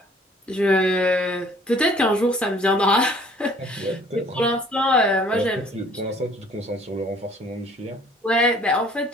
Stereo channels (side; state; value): both; normal; correlation 0.56